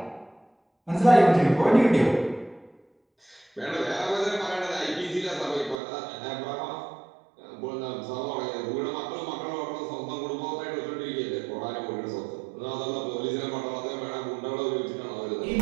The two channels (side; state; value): left; drops out; at 5.8 s